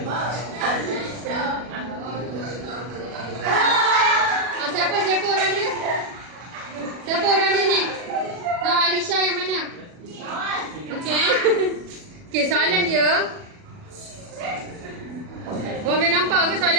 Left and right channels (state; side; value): late; left; 40 ms